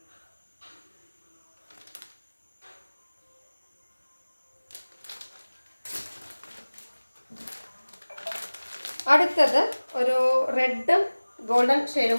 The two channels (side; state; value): both; inverted; correlation -1.00